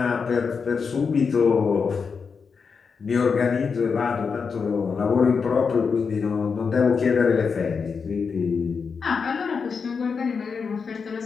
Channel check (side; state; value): right; quieter; 5.5 dB